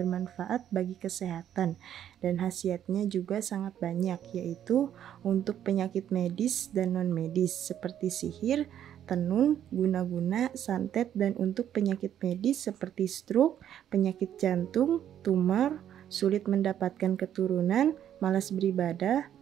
bagi kesehatan dan khasiatnya juga sangat banyak, yaitu untuk penyakit medis dan non-medis seperti sihir, tenun, guna-guna, santet, dan untuk penyakit medis seperti stroke, penyakit jantung, tumor, sulit mendapatkan keturunan, malas beribadah,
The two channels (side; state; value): left; quieter; 10.3 dB